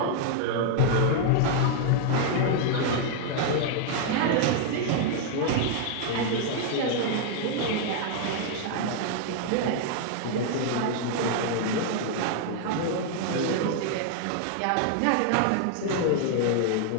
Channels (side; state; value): both; different; correlation 0.00